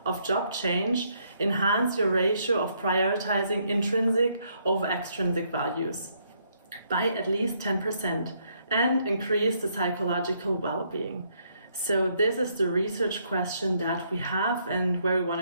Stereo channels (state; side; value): inverted; both; correlation -0.72